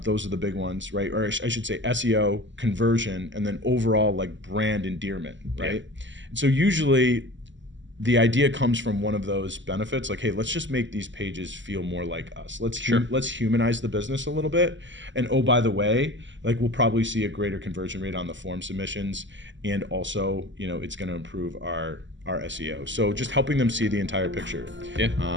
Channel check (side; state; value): left; late; 0.54 ms